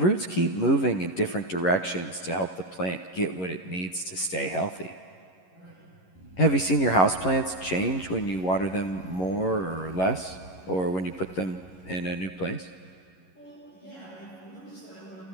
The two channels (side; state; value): right; late; 11 ms